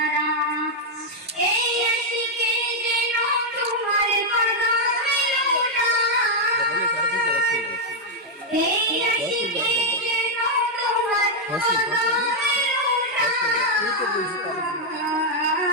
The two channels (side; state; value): both; normal; correlation -0.01